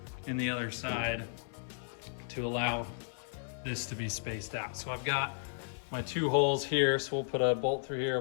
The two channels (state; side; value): silent; right; 55 dB below the other